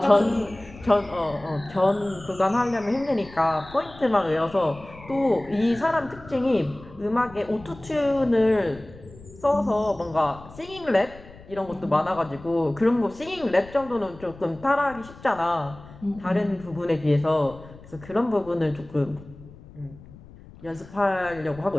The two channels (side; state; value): left; noise; rumble, 19 dB below the sound